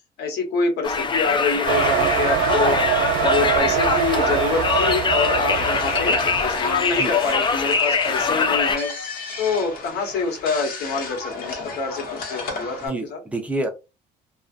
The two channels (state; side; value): normal; both; correlation 0.01